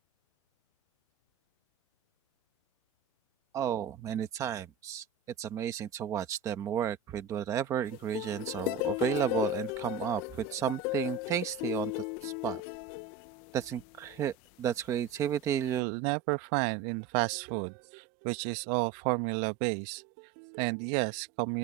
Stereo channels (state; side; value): drops out; left; at 15.8 s